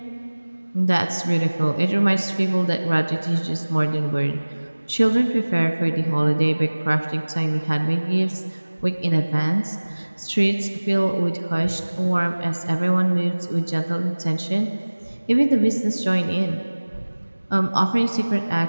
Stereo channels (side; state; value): both; inverted; correlation -1.00